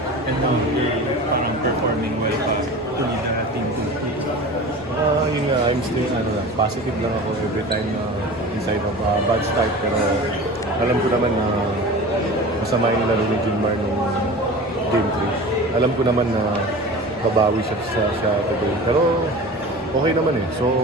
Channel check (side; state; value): both; normal; correlation 0.36